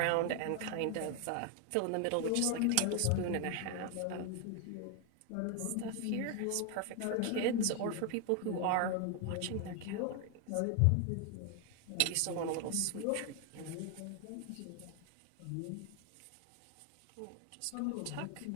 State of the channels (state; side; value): different; both; correlation 0.01